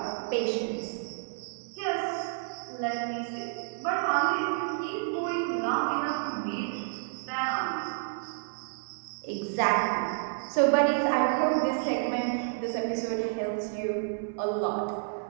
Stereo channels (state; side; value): silent; left; 58 dB below the other